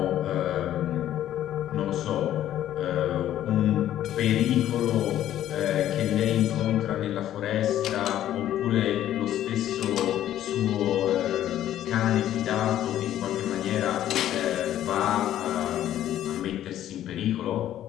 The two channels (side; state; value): right; quieter; 12.1 dB